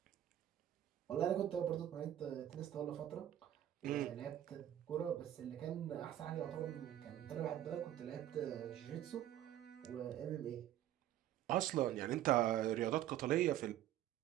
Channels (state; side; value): quieter; left; 12.1 dB